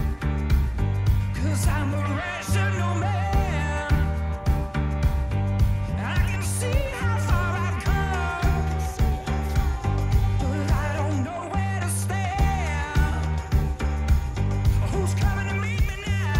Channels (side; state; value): both; identical; correlation 1.00